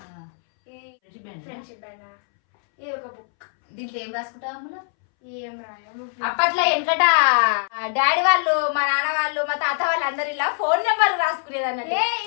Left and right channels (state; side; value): silent; right; 63 dB below the other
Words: ఫ్రెండ్షిప్ బ్యాండ్. ఇది ఒక బుక్. దీంట్లో ఏం రాసుకుంటావు అందులో? ఏం రాదు. అప్పట్లో వెనకట డాడీ వాళ్ళు, మా నాన్న వాళ్ళు, మా తాత వాళ్ళు అందరు ఇలా ఫోన్ నెంబర్ రాసుకునేది అన్నట్టు.